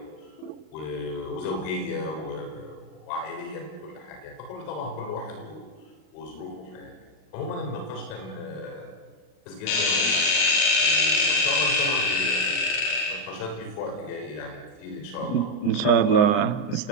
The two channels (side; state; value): right; late; 39 ms